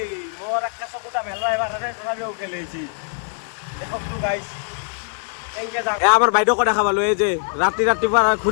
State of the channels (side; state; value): right; silent; 55 dB below the other